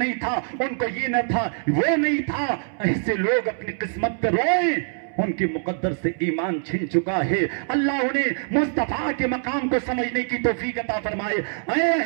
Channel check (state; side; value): silent; left; 63 dB below the other